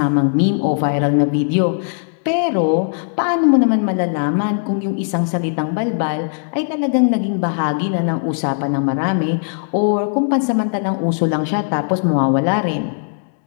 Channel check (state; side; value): silent; right; digital silence